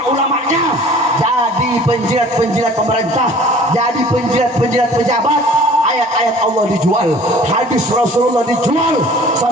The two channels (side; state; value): both; normal; correlation 0.48